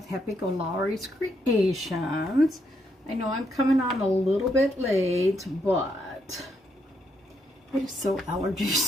Happy-go-Lowery's Creations. I know I'm coming on a little bit late, but it is so allergy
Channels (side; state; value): both; normal; correlation 0.77